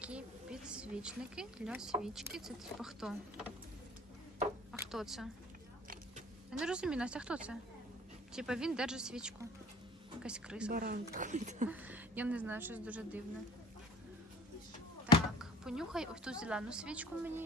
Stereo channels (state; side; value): normal; both; correlation 0.49